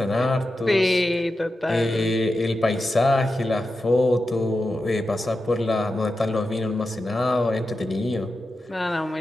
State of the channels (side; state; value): both; normal; correlation 0.90